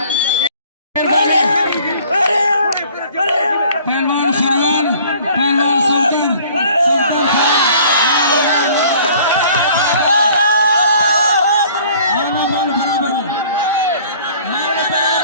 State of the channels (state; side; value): inverted; both; correlation -0.52